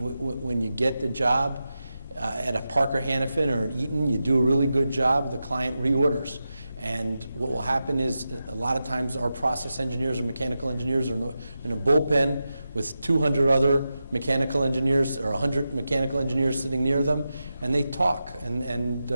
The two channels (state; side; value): inverted; both; correlation -0.91